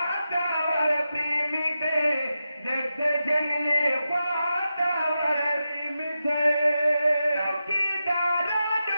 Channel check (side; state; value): both; inverted; correlation -0.90